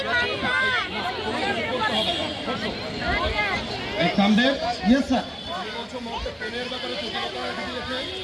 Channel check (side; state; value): both; identical; correlation 1.00